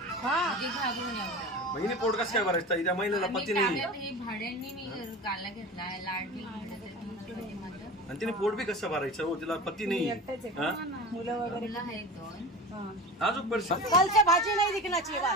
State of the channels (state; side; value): normal; both; correlation 0.32